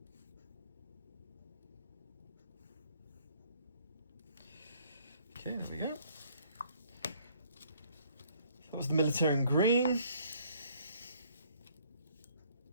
Okay, there we go. That was the Militarium green.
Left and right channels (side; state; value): both; inverted; correlation -0.62